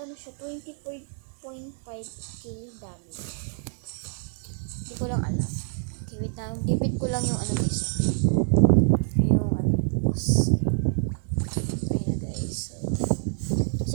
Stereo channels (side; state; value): left; silent; digital silence